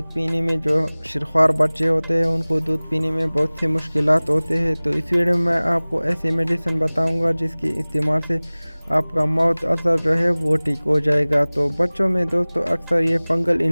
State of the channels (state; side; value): inverted; both; correlation -1.00